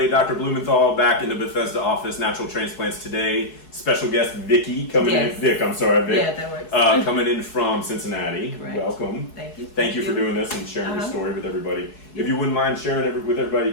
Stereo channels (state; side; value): late; right; 4.7 ms